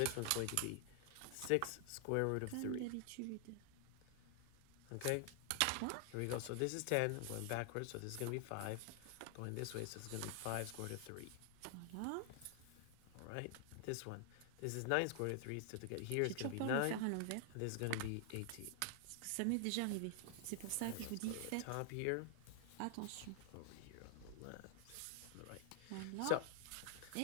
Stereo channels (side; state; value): both; different; correlation 0.00